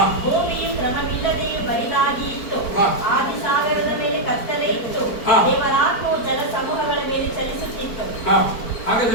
ಭೂಮಿಯು ಕ್ರಮವಿಲ್ಲದೆಯೂ ಬರಿದಾಗಿ ಇತ್ತು. ಆದಿ ಸಾಗರದ ಮೇಲೆ ಕತ್ತಲೆ ಇತ್ತು. ದೇವರ ಆತ್ಮವು ಜಲ ಸಮೂಹಗಳ ಮೇಲೆ ಚಲಿಸುತ್ತಿತ್ತು. ಹಾಗೆ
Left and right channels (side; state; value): right; late; 4.5 ms